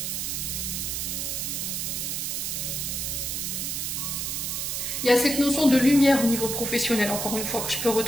Il y a cette notion de lumière au niveau professionnel, encore une fois, que je peux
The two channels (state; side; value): noise; right; hiss, 2 dB below the sound